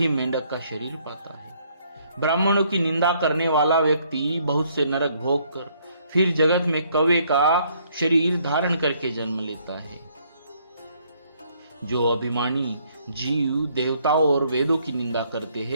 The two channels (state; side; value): inverted; both; correlation -0.67